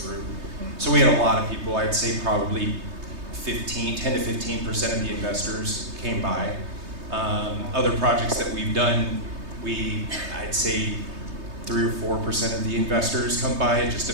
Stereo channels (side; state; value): left; late; 3.2 ms